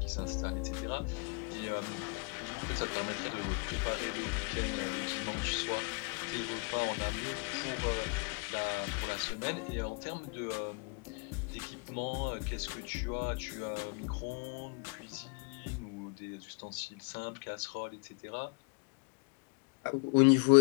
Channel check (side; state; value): right; quieter; 33.7 dB